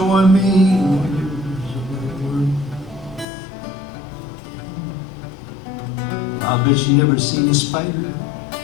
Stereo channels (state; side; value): drops out; right; at 3.2 s